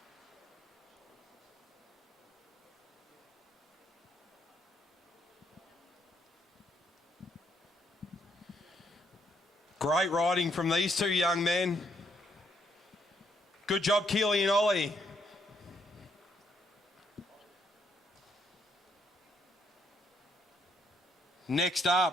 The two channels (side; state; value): both; normal; correlation 0.73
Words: Great riding from these two young men. Good job, Keely and Ollie. Next